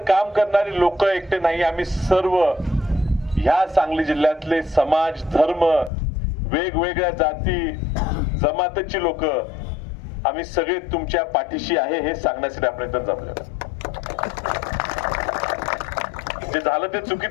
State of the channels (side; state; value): right; drops out; at 5.9 s